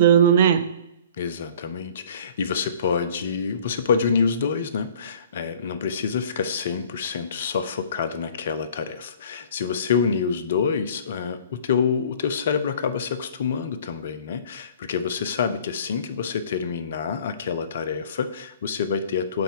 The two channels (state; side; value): inverted; both; correlation -0.49